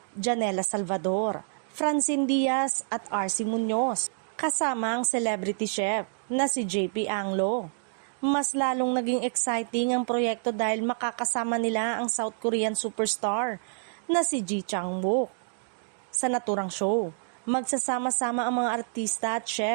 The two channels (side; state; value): left; silent; digital silence